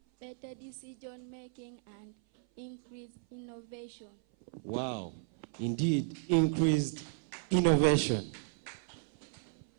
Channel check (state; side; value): silent; left; 55 dB below the other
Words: better decision making, and increased innovation. Wow, indeed, increased innovation.